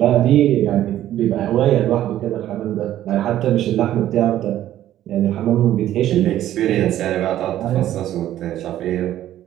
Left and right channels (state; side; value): quieter; left; 12.7 dB